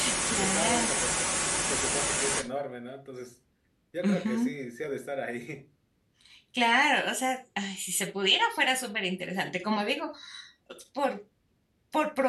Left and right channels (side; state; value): both; identical; correlation 1.00